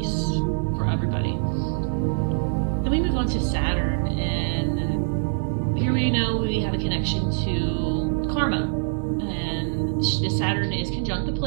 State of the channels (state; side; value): silent; left; 62 dB below the other